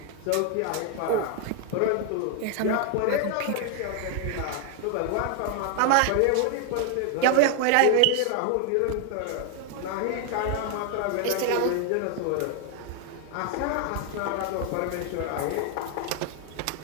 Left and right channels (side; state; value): both; different; correlation 0.00